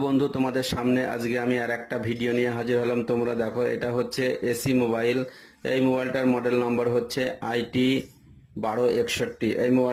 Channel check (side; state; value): both; identical; correlation 1.00